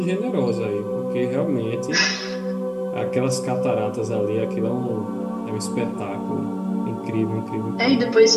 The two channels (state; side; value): identical; both; correlation 1.00